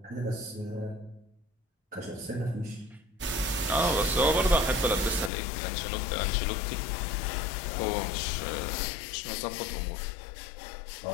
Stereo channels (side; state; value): right; drops out; at 5.3 s